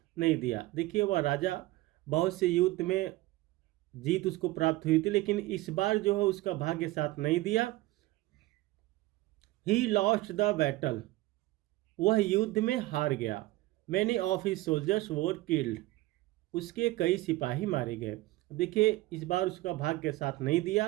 नहीं दिया। देखिए वह राजा बहुत से युद्ध में जीत उसको प्राप्त हुई थी, लेकिन इस बार जो है उसका भाग्य साथ नहीं दिया। ही लॉस्ट द बैटल, वह युद्ध में हार गया। Many of his soldiers were killed, उसके कई सिपाही मारे गए। देखिए इस बार उसका भाग्य साथ नहीं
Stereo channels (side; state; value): left; quieter; 18.6 dB